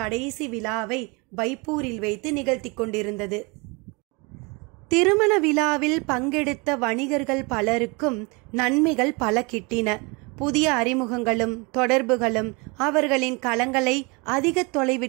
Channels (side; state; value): left; quieter; 28.9 dB